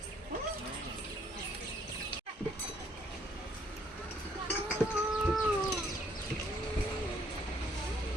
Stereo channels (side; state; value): both; normal; correlation 0.66